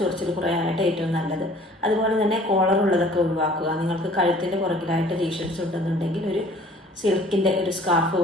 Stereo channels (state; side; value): normal; both; correlation 0.52